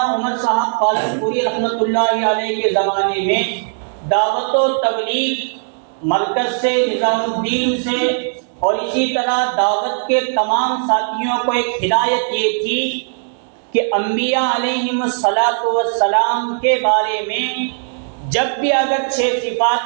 عمر صاحب پالنپوری رحمۃ اللہ علیہ کے زمانے میں دعوت و تبلیغ مرکز سے، نظام الدین سے اور اسی طرح دعوت کے تمام ساتھیوں کو ایک ہدایت یہ تھی کہ انبیاء علیہم السلام کے بارے میں جب بھی اگر 6 صفات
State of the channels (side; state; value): left; silent; 67 dB below the other